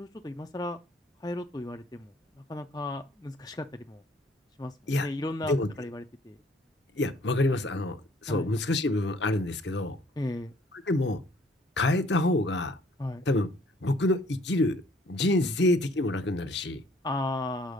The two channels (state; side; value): normal; both; correlation 0.59